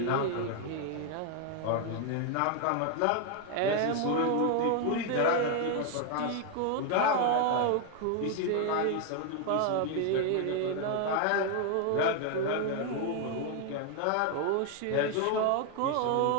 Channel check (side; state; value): both; different; correlation 0.01